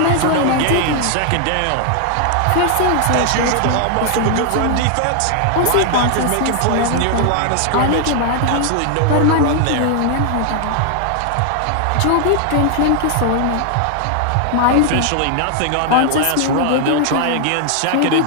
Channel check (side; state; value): both; different; correlation 0.00